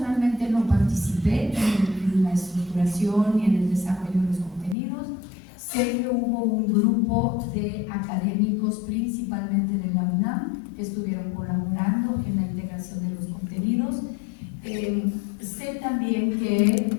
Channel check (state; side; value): drops out; right; at 4.8 s